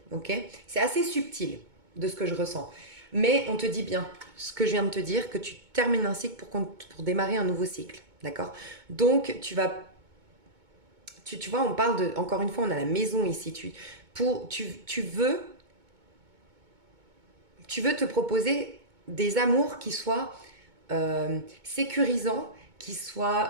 Ok. C'est assez subtil de ce que je ressens. Mais on te dit bien ce que je viens de te dire, que tu termines un cycle pour démarrer un nouveau cycle. D'accord. Donc, tu vois, on parle de, encore une fois, on a la maison ici. Tu veux te proposer des amours qui soient sécurisants, qui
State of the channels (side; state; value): left; late; 2.2 ms